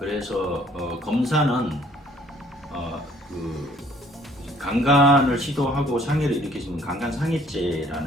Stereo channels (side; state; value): both; normal; correlation 0.59